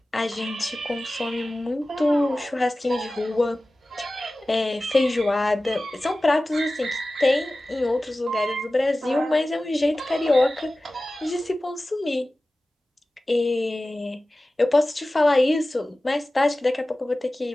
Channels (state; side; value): normal; both; correlation 0.96